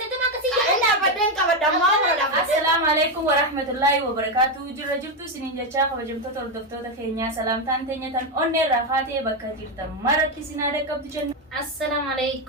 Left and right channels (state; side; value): normal; both; correlation 0.07